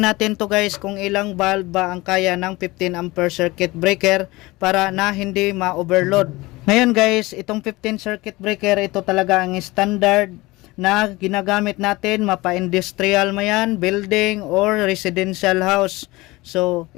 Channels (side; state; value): right; quieter; 21.1 dB